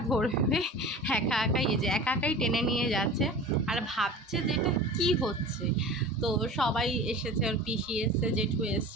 ধরবে। একা একাই, এই যে একা একাই টেনে নিয়ে যাচ্ছে আর ভাবছে যে এটা কী হচ্ছে। তো সবাই এসেছে, ওর পিসি এসছে, জেঠু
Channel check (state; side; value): normal; both; correlation 0.37